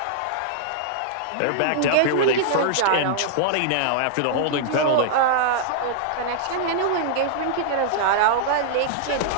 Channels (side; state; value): both; different; correlation -0.01